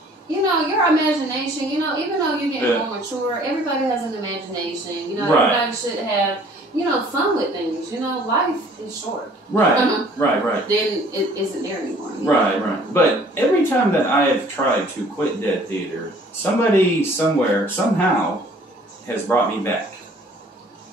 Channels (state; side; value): normal; both; correlation 0.55